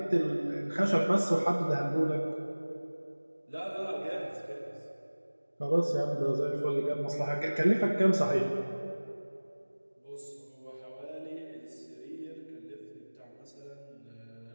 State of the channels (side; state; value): both; inverted; correlation -1.00